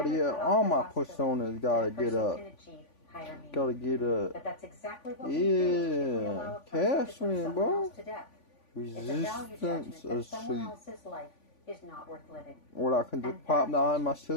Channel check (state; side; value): late; right; 3.5 ms